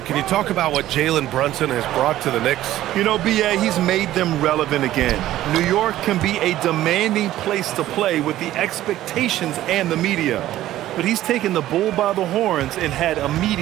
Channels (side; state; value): left; quieter; 14.1 dB